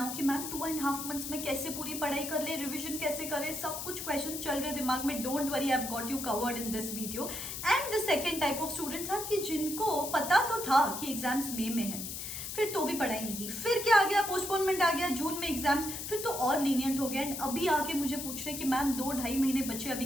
कि ma'am 2.5 months में कैसे पूरी पढ़ाई कर ले, revision कैसे करें, सब कुछ क्वेश्चन चल रहे दिमाग में. Don't worry, I have got you covered in this video. And the second type of students are कि जिनको पता तो था कि एग्जाम्स मई में है, फिर तो भी पढ़ाई नहीं की, फिर क्या आ गया, पोस्टपोनमेंट आ गया, जून में एग्जाम्स, फिर तो और लीनियंट हो गया. एंड अभी आके मुझे पूछ रहे कि मैम 2-2.5 महीने बच्चे अभी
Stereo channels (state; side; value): noise; left; hiss, 6 dB below the sound